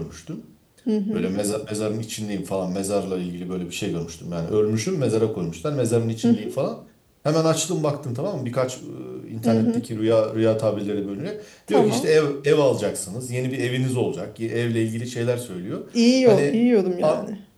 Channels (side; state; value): both; identical; correlation 1.00